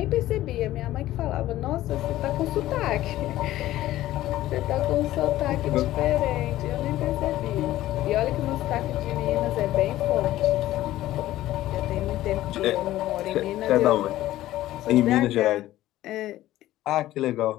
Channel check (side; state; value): right; quieter; 14.9 dB